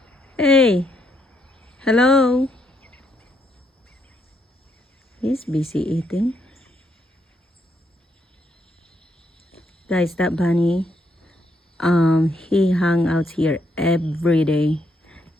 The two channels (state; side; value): normal; both; correlation 0.75